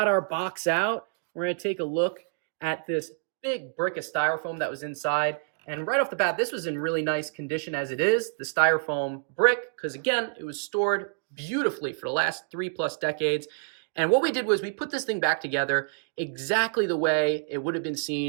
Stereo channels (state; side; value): silent; left; digital silence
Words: our box out. We're going to take a look at this big brick of styrofoam that was inside. And right off the bat, this was in really nice condition as it is, the styrofoam brick, because again, it was stored beautifully for the last 3+ decades. And what we did was we put this thing back together exactly the way it would have been